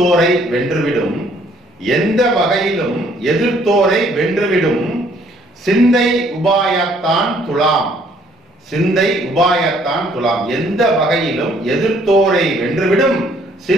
வென்றுவிடும், எந்த வகையிலும் எதிர்த்தோரை வென்றுவிடும் சிந்தை உபாயத்தான் துலாம், சிந்தை உபாயத்தான் துலாம். எந்த வகையிலும் எதிர்த்தோரை வென்றுவிடும்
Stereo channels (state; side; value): normal; both; correlation 0.63